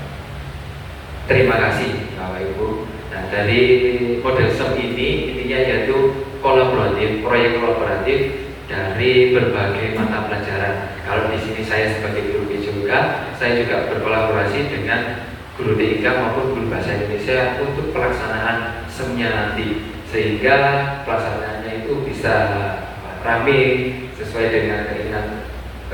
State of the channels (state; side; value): identical; both; correlation 1.00